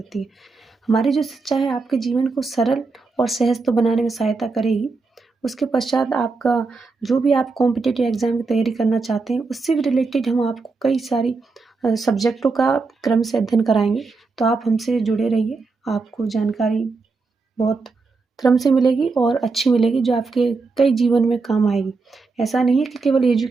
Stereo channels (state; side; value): quieter; left; 4.1 dB